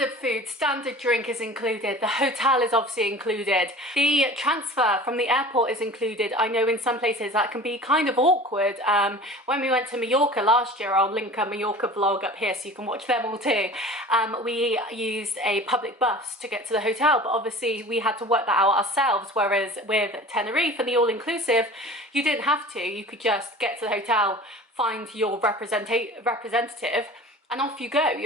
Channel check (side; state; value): both; normal; correlation 0.40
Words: food, standard drink is included. The hotel is obviously included. The transfer from the airport is included. I know in some places that can be kind of awkward. When we went to Mallorca last year, I'll link a Mallorca vlog up here so you can watch them all too. We used a public bus to get to the hotel, but obviously we had to work that out ourselves, whereas with Tenerife and the all-inclusive, you didn't have to. You could just get to the hotel, find your representative, and off you go,